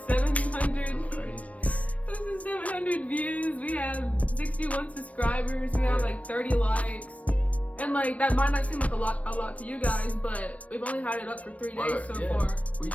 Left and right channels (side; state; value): right; late; 0.066 ms